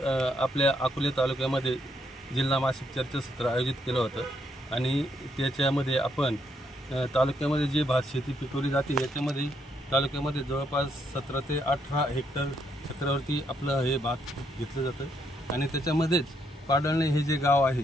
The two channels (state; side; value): normal; both; correlation 0.75